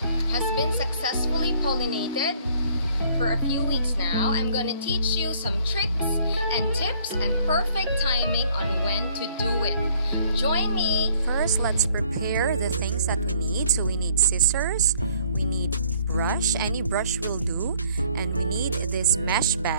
has been successfully pollinated for a few weeks now. I'm going to teach you some tricks and tips and perfect timing on when to do it. Join me! First, let's prepare the things that we need. So we need scissors, we need brush, any brush will do, and we need this mesh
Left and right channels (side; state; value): both; inverted; correlation -0.59